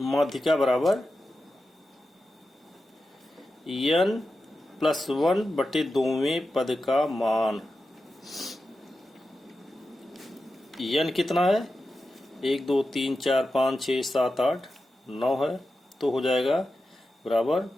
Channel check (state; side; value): normal; both; correlation 0.91